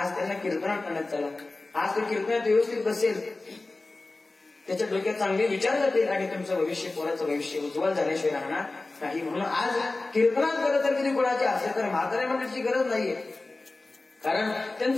त्यांना कीर्तनात आणत चला. आज तो कीर्तनात व्यवस्थित बसेल, त्याच्या डोक्यात चांगले विचार जातील आणि तुमचं भविष्य, पोराचं भविष्य उज्ज्वल झाल्याशिवाय राहणार नाही. म्हणून आज कीर्तनात खरं तर किती गुणाचे असेल तर म्हाताऱ्या मंडळीची गरज नाहीये, कारण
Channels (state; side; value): quieter; right; 3.2 dB